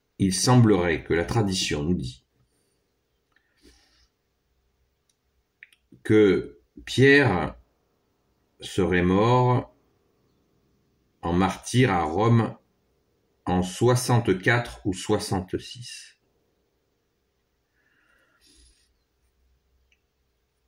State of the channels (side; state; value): both; identical; correlation 1.00